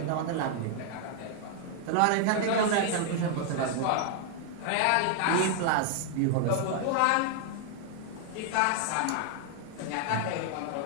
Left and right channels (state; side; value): different; both; correlation 0.00